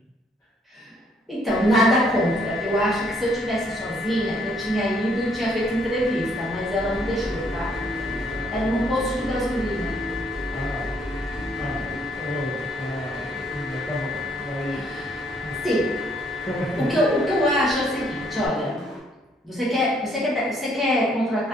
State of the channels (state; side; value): normal; both; correlation 0.67